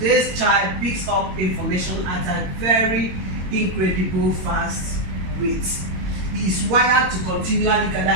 child picks up information at a very incredible fast rate. He is wired to continually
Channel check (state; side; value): late; left; 22 ms